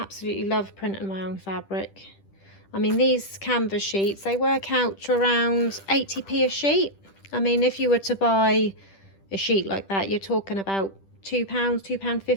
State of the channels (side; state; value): right; late; 10 ms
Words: love printing my own fabric. I mean, these canvas sheets, they work out to around 80p a sheet. I mean, if you were to buy a sheet like that, you're talking about £2,